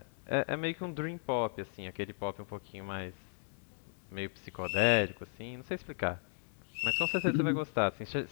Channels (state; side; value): silent; right; digital silence